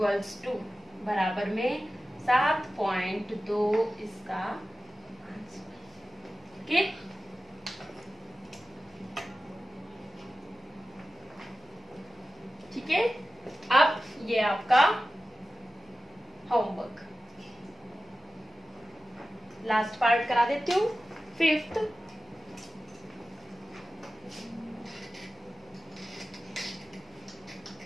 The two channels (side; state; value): both; normal; correlation 0.95